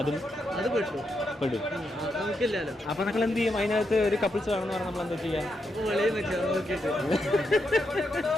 പെടും. അപ്പൊ നമ്മൾ എന്ത് ചെയ്യും? അതിനകത്ത് ഒരു കപ്പിൾസ് വേണമെന്ന് പറഞ്ഞാൽ നമ്മൾ എന്താ ചെയ്യാം?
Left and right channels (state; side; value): normal; both; correlation 0.82